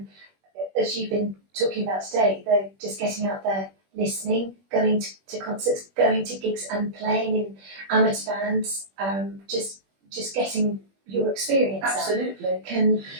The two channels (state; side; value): late; left; 21 ms